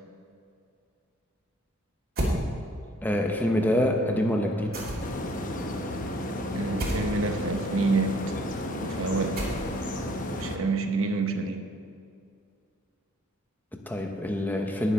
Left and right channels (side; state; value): both; normal; correlation 0.62